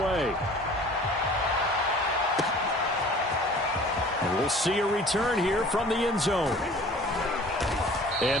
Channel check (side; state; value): both; normal; correlation 0.47